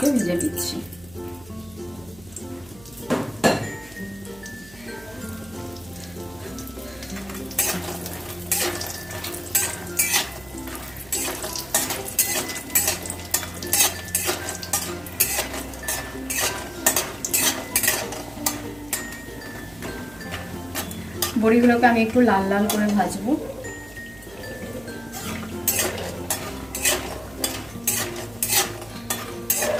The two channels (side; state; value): right; noise; hum, 21 dB below the sound